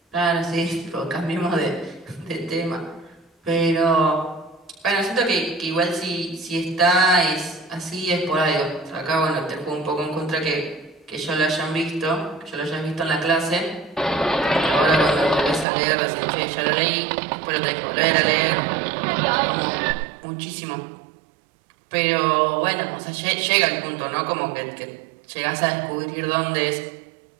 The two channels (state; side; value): drops out; left; at 15.7 s